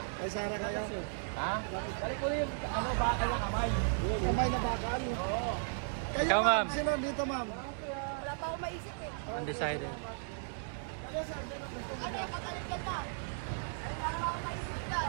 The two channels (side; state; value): left; silent; digital silence